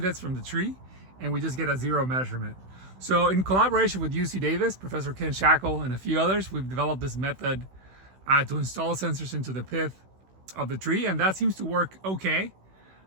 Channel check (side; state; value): left; late; 16 ms